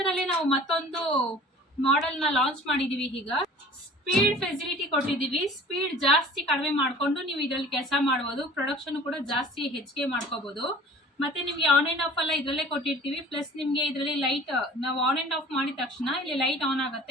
ಅಲ್ಲಿ ನಾವು ಮತ್ತೊಂದು ಮಾಡೆಲ್ ನ ಲಾಂಚ್ ಮಾಡಿದೀವಿ. ಈಗ ಸ್ಪೀಡ್ ಫೆಸಿಲಿಟಿ ಕೊಟ್ಟಿದ್ದೀವಿ. ಸ್ಪೀಡ್ ಜಾಸ್ತಿ ಕಡಿಮೆ ಮಾಡ್ಕೊಂಡು ನೀವು ಇದರಲ್ಲಿ ಕೆಲಸ ಮಾಡ್ಬೋದು. ಪ್ರೊಡಕ್ಷನ್ ಕೂಡ ಜಾಸ್ತಿ ಹೆಚ್ಚಿಗೆ ಮಾಡ್ಕೋಬಹುದು. ಮತ್ತೆ ನಿಮ್ಗೆ ಆನ್ ಅಂಡ್ ಆಫ್ ಎಲ್ಲ ಇದರಲ್ಲೇ ಕೊಟ್ಟಿರ್ತೀವಿ. ಪ್ಲಸ್ ನಿಮ್ಗೆ ಇದರಲ್ಲಿ ಲೈಟ್ ನಾವು ಆನ್ ಅಂಡ್ ಆಫ್ ಮಾಡಿದ ತಕ್ಷಣ ಇಲ್ಲಿ ಲೈಟ್ ಆನ್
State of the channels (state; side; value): normal; both; correlation 0.46